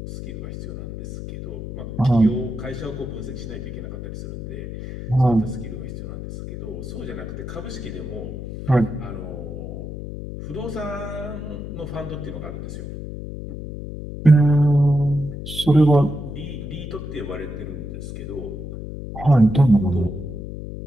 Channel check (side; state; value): left; noise; hum, 8 dB below the sound